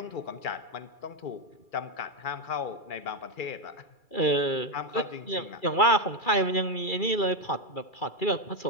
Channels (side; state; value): right; late; 2.3 ms